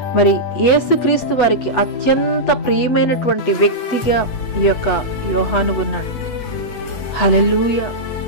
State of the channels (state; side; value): late; right; 8.1 ms